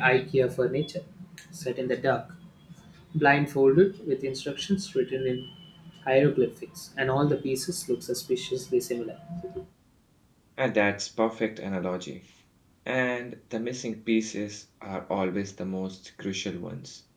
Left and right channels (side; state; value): both; identical; correlation 1.00